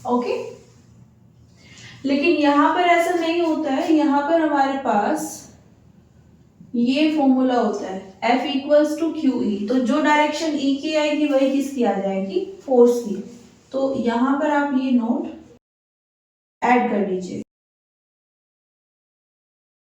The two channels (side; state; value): both; identical; correlation 1.00